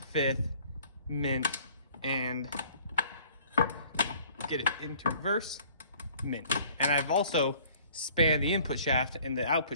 fifth, mint, and get it into reverse, mint. And I've also spanned the input shaft, and the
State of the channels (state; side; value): inverted; both; correlation -0.54